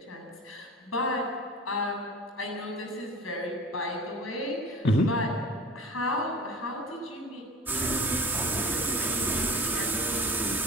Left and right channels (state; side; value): normal; both; correlation 0.36